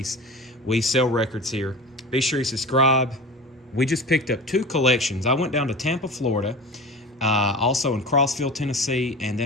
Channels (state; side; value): normal; both; correlation 0.32